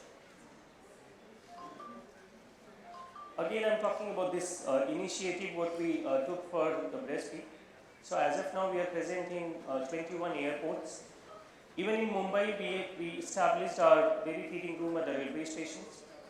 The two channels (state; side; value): identical; both; correlation 1.00